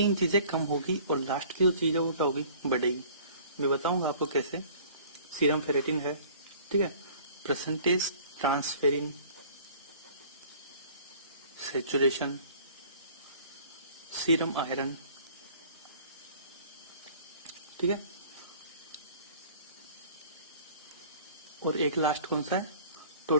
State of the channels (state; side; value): inverted; both; correlation -0.50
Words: चीजें कम होगी और लास्ट की जो चीज है वो क्या होगी, बढ़ेगी। मैं बताऊंगा आपको कैसे। सीरम फेरेटिन है, ठीक है, percentage transferrin, saturation, serum iron, ठीक है, और एक लास्ट कौन सा है,